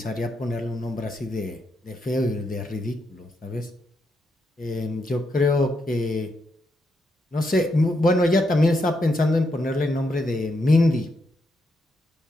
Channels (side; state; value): both; normal; correlation 0.81